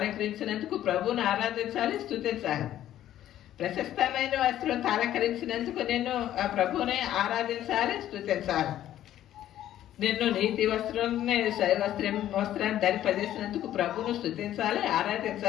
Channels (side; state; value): right; quieter; 12.4 dB